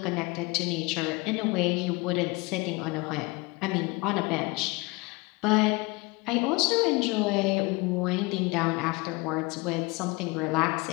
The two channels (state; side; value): quieter; right; 25.4 dB